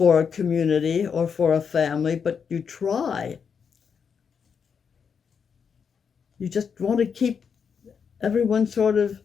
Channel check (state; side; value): quieter; right; 6.5 dB